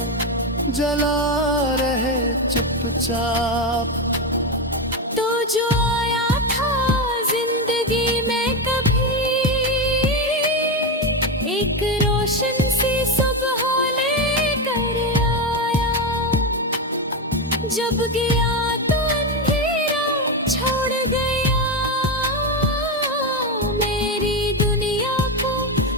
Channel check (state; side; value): normal; both; correlation 0.12